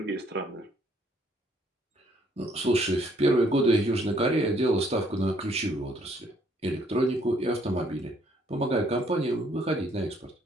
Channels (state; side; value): normal; both; correlation 0.66